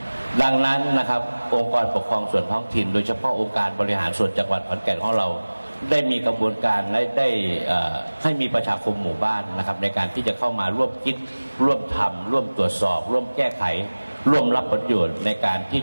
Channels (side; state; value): both; inverted; correlation -1.00